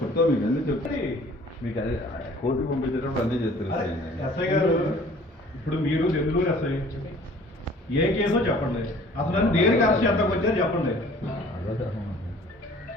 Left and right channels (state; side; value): normal; both; correlation 0.52